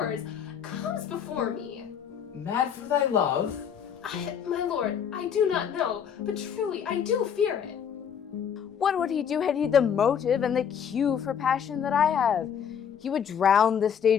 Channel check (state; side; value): quieter; right; 8.0 dB